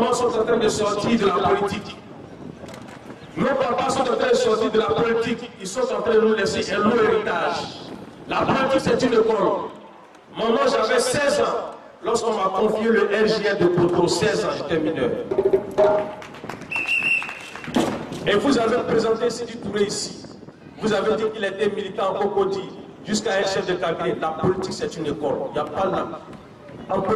sont en train de sortir de la politique. Nos papas sont en train de sortir de la politique. Ils sont en train de nous laisser un long héritage. La politique, c'est une école. Maman, j'avais 16 ans lorsqu'on m'a confié le RJR de Poto. 16 ans, j'étais mineur. Et vous avez présenté Sidi Touré ici. Vous avez dit qu'il était militant en Cocody, jusqu'à un chef de cabinet. La politique, c'est une école. Il n'y a pas de... En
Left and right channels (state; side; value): identical; both; correlation 1.00